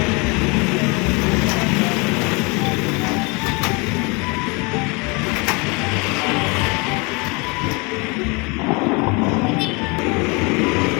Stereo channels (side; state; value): right; quieter; 29.0 dB